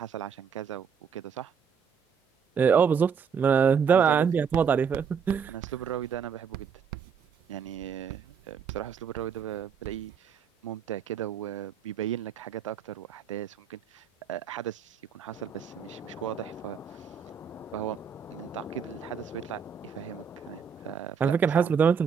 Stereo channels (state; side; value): quieter; left; 6.7 dB